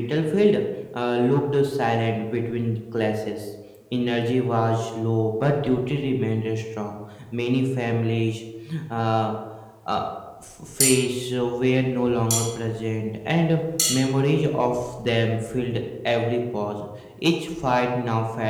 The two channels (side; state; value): both; identical; correlation 1.00